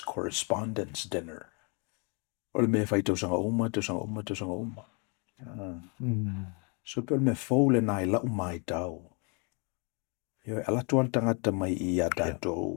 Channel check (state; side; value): quieter; right; 35.1 dB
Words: Dinner. O le mea whai tausanga uma. So pe o le mea fō le nai lau mai tau. Yo ala tuan tangata mai I a